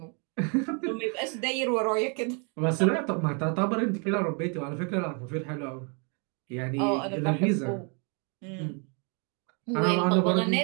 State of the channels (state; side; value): quieter; left; 36.8 dB